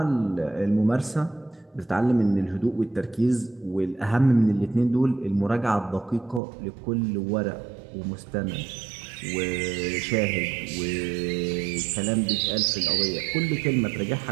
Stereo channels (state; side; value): drops out; left; at 6.4 s